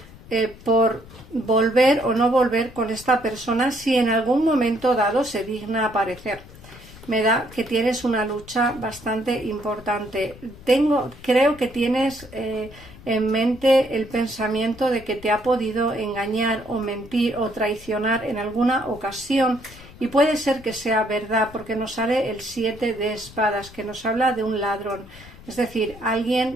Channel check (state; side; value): noise; left; rumble, 20 dB below the sound